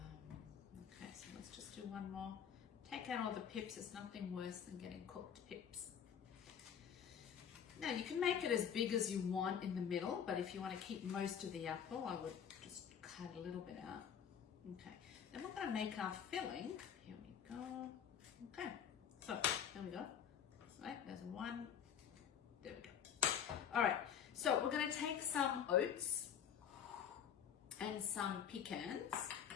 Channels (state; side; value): quieter; right; 8.2 dB